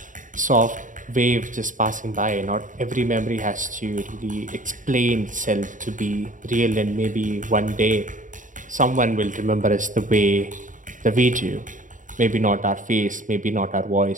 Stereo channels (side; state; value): left; late; 0.38 ms